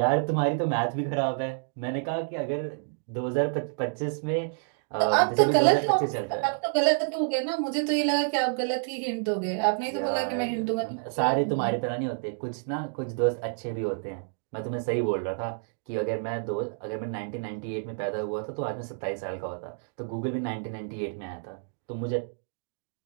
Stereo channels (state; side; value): silent; left; digital silence